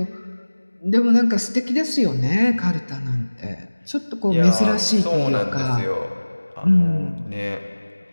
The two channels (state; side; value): inverted; both; correlation -1.00